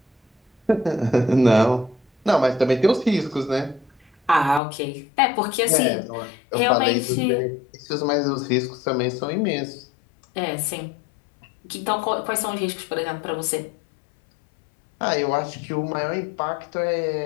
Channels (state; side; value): drops out; right; at 4.6 s